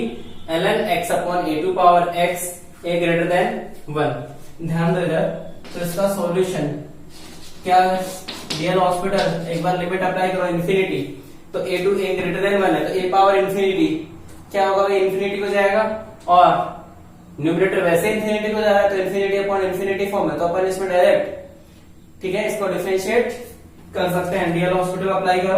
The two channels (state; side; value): identical; both; correlation 1.00